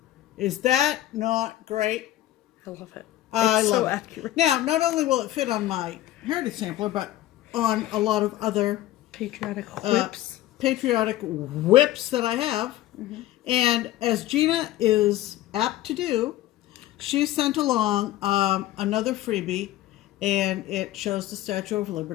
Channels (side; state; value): right; quieter; 14.7 dB